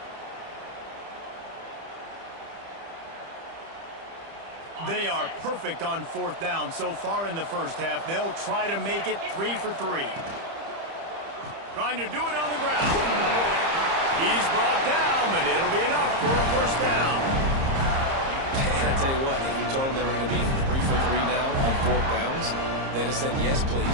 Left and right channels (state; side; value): late; left; 30 ms